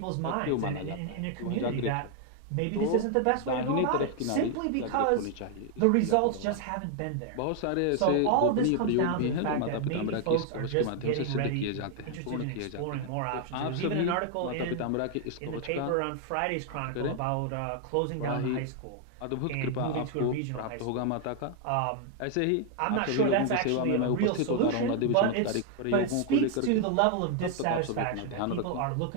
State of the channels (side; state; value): both; different; correlation 0.00